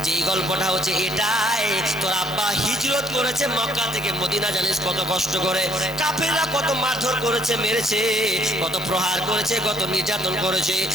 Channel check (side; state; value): both; normal; correlation 0.66